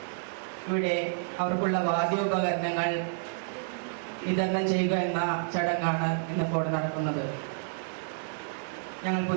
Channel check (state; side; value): silent; left; digital silence